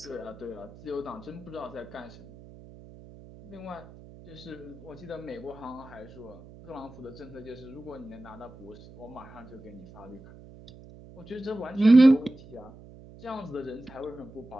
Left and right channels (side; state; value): right; noise; hum, 19 dB below the sound